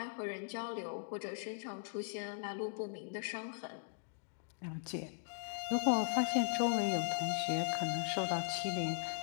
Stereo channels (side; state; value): right; silent; digital silence